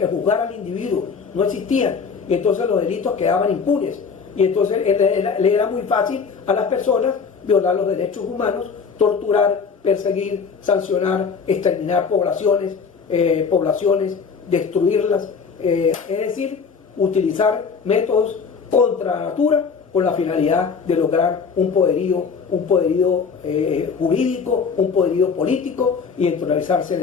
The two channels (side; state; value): right; quieter; 5.6 dB